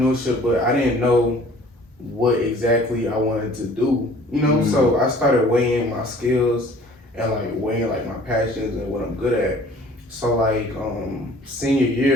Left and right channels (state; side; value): normal; both; correlation 0.51